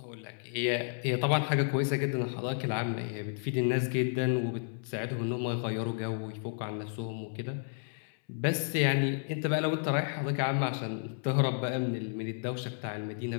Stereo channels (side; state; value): right; silent; 56 dB below the other